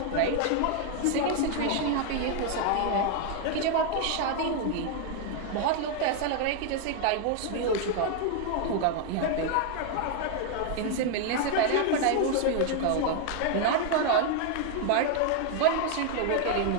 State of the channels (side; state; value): both; different; correlation 0.00